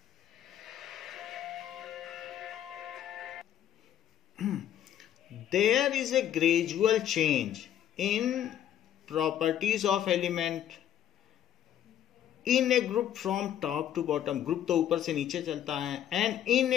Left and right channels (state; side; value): quieter; right; 10.7 dB